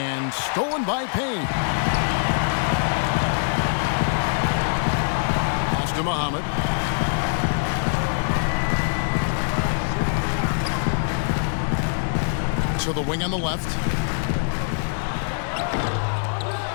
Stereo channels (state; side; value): silent; right; 63 dB below the other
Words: stolen by Payne. Pass to Muhammad. To the wing on the left.